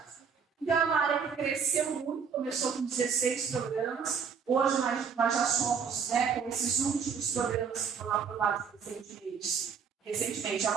Então, é uma área que cresceu muito, começou com 16 programas, hoje nós já somos, né, com esses últimos programas que foram aprovados recentemente, é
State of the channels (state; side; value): quieter; left; 6.4 dB